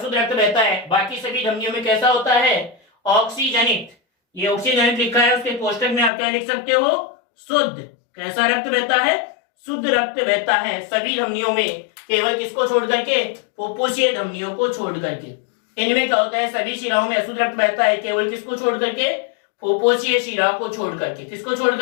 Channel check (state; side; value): drops out; right; at 6.1 s